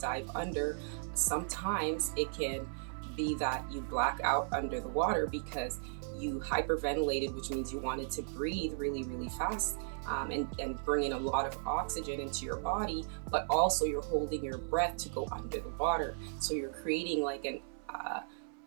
under, sometimes it can be that you black out under the water because you hyperventilated, which means you wanted to breathe really, really fast and bring in a lot of oxygen into your body, but also you're holding your breath to go under the water. So you're creating like an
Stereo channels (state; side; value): silent; left; 54 dB below the other